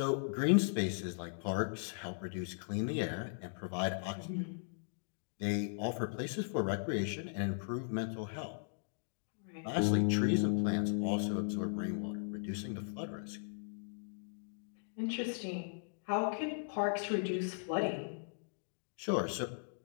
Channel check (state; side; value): silent; right; digital silence